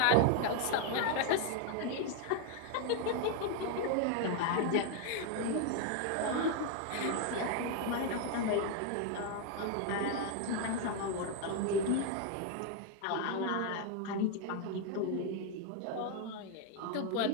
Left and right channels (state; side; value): different; both; correlation 0.00